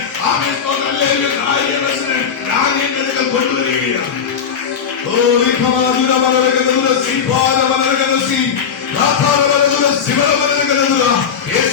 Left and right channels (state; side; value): quieter; right; 7.1 dB